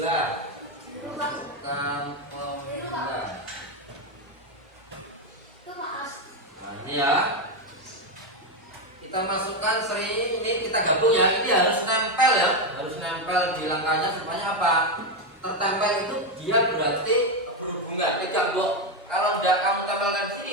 Nah, ini ya. Kita masukkan seri ini, kita gabung ya. Ini harus nempel ya. Harus nempel di langkahnya supaya apa? tertempel itu dia berarti berhubungan. Pegang kok. Kalau tidak kamu tempelkan di sini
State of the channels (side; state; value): both; normal; correlation 0.08